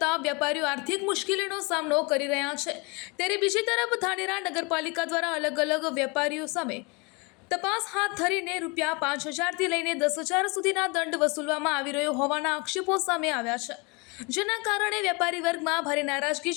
વેપારીઓ આર્થિક મુશ્કેલીનો સામનો કરી રહ્યા છે, ત્યારે બીજી તરફ ધાનેરા નગરપાલિકા દ્વારા અલગ વેપારીઓ સામે તપાસ હાથ ધરીને ₹5,000 થી લઈને 10,000 સુધીના દંડ વસૂલવામાં આવી રહ્યો હોવાના આક્ષેપો સામે આવ્યા છે, જેના કારણે વેપારી વર્ગમાં ભારે નારાજગી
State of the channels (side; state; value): right; quieter; 29.3 dB